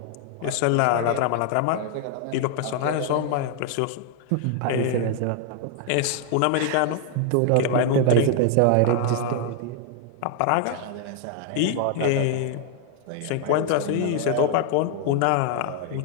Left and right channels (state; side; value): different; both; correlation 0.00